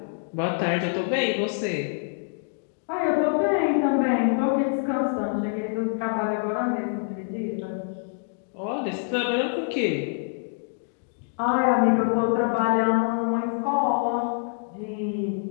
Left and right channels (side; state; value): right; silent; 61 dB below the other